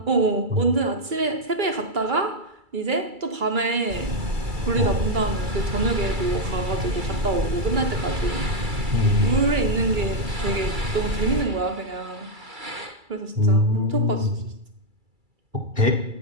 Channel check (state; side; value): late; left; 2.3 ms